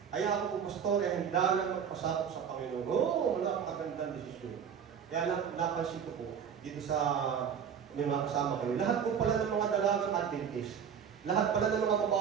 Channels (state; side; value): quieter; left; 7.7 dB